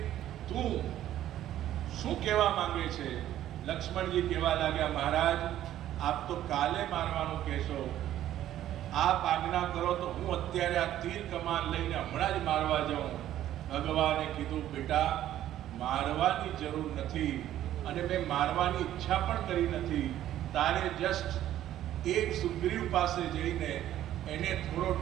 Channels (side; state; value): left; quieter; 12.5 dB